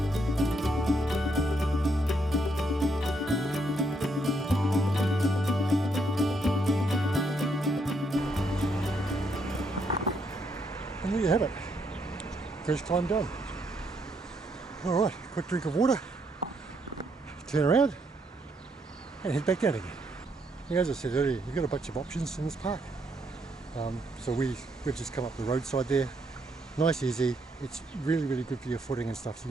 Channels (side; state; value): both; normal; correlation 0.75